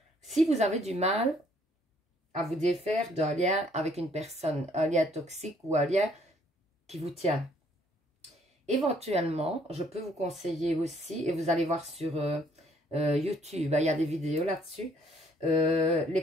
Si vous avez du mal à vous défaire d'un lien avec une personne, un lien toxique ou un lien qui vous tient, éventuellement, je peux vous conseiller aussi, et vous allez voir sur YouTube, il y a des vidéos là-dessus,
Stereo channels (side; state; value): both; normal; correlation 0.64